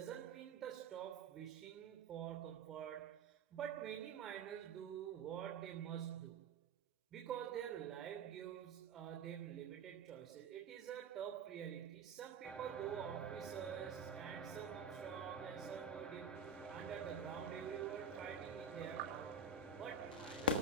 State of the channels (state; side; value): quieter; left; 4.6 dB